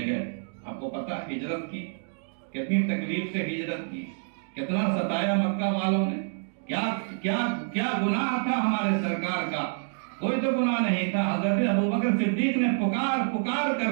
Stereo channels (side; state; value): left; silent; digital silence